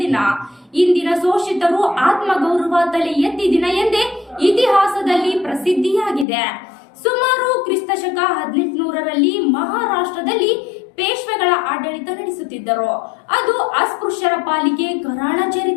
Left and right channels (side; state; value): right; drops out; at 6.2 s